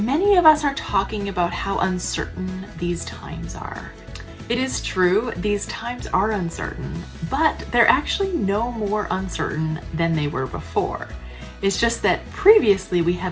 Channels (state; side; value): identical; both; correlation 1.00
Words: of us are talking about how uncertain these times are. It is true, these times are uncertain, but they're actually no more uncertain than they were before. It's just that previously we